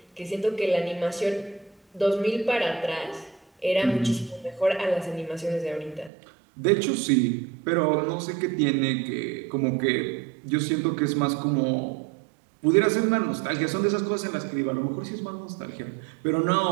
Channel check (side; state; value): left; drops out; at 6.1 s